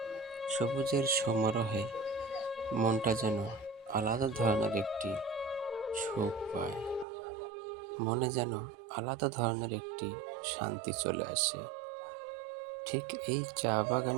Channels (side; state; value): left; drops out; at 7.1 s